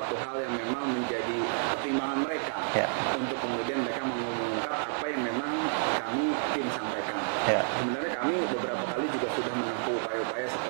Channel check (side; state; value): left; silent; 58 dB below the other